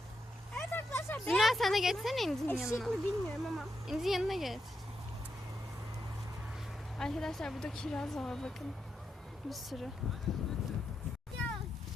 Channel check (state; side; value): normal; both; correlation 0.83